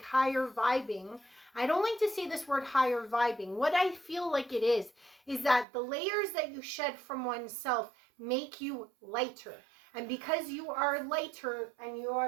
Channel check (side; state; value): left; drops out; at 5.7 s